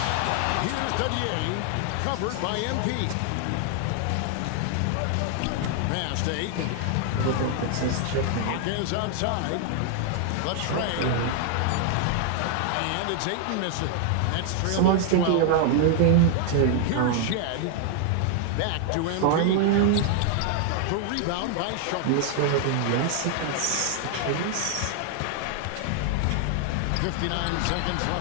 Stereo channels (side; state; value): both; different; correlation 0.00